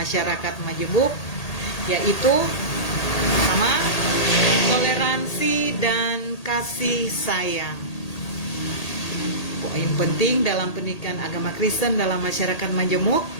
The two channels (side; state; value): right; late; 1.8 ms